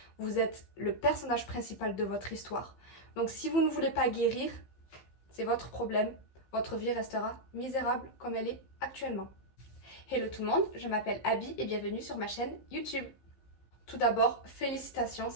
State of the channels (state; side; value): late; right; 15 ms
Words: vous êtes le personnage principal de votre histoire. Donc si vous ne voulez pas guérir, c'est votre problème, votre vie restera misérable comme elle est actuellement. Hello tout le monde, je m'appelle Abby et bienvenue sur ma chaîne YouTube. Tout d'abord, félicitations